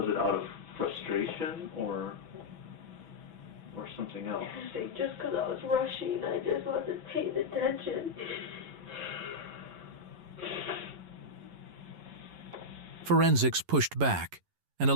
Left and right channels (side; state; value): left; late; 11 ms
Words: it out of frustration or something else? I think just because I was rushing, I just wasn't paying attention. Forensics pushed back, an